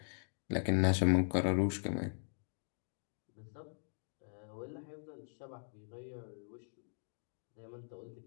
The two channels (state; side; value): silent; right; digital silence